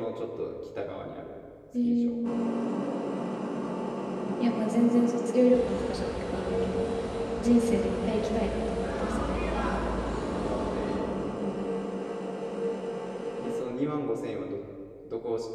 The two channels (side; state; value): both; identical; correlation 1.00